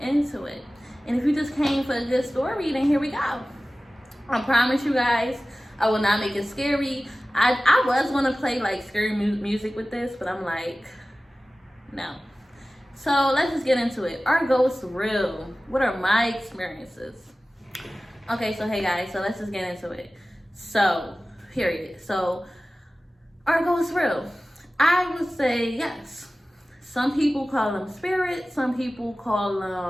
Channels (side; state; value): both; normal; correlation 0.97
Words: into it. And if you just came for a good story, then here we go. I promise you guys, I will not make it scary. I was going to play like scary music with this, but I'm like, no. So let's just get into it. Are ghosts real? What are my experiences? Okay, so hey guys, so let's just get into it. So, period. So, are ghosts real? I would say yes. Some people call them spirits. Some people call